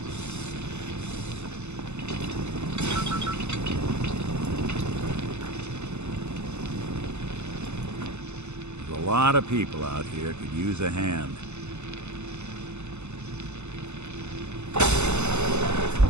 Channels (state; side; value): late; left; 0.82 ms